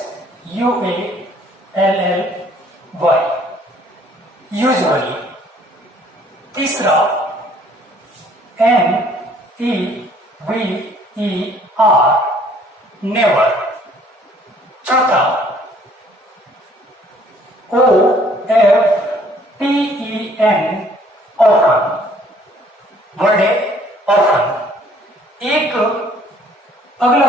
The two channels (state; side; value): normal; both; correlation 0.59